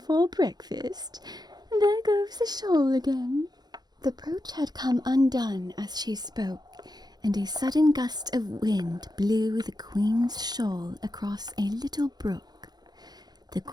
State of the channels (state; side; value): late; left; 0.19 ms